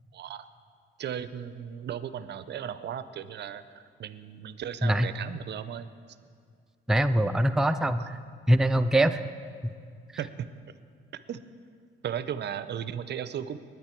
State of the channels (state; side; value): normal; both; correlation 0.84